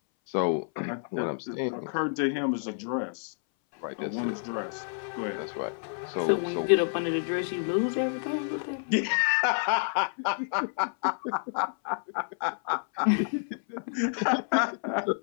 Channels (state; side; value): silent; right; 59 dB below the other